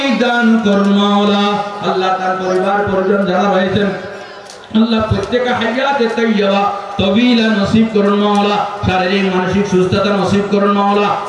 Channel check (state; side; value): identical; both; correlation 1.00